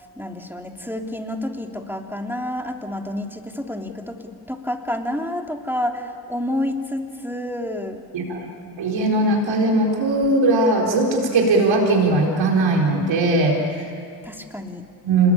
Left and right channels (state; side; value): normal; both; correlation 0.20